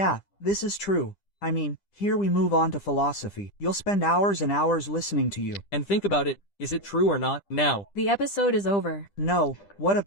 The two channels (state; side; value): late; right; 10 ms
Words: this is true. I mean, here we move on to philosophy. You'll spend hours and hours listening to you. And think about it, is it true or not? Now, The episode is over. No, what a